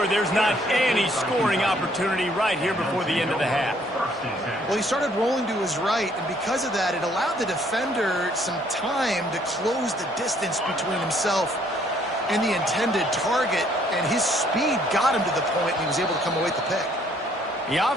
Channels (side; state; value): both; normal; correlation 0.64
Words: there's not any scoring opportunity right here before the end of the half. Well, he started rolling to his right, and because of that, it allowed the defender some time to close the distance between himself and the intended target, and his speed got him to the point, and he was able to come away with the pick. The